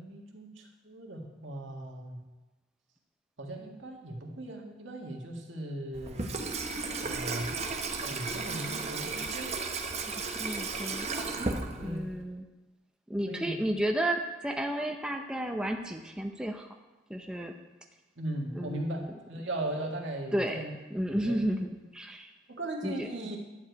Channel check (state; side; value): normal; both; correlation 0.64